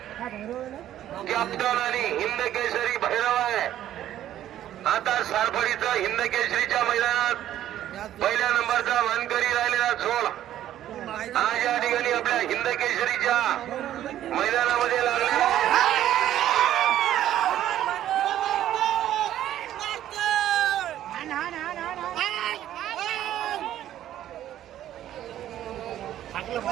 कॅप्टन आणि हिंद केसरी भैरव आहे. आता सारफडीचा हिंद केसरीच्या मैदानात पहिल्या नंबरचा मानकरी राहिलेला झोळ आज या ठिकाणी आपल्या हिंद केसरीच्या मैदानामध्ये लागलेला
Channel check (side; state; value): left; quieter; 12.1 dB